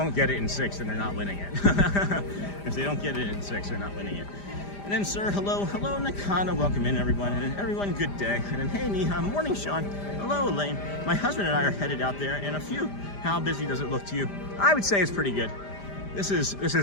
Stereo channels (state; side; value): late; right; 5.0 ms